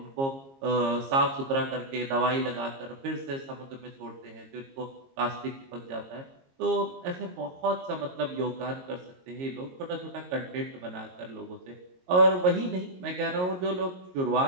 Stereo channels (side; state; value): left; late; 22 ms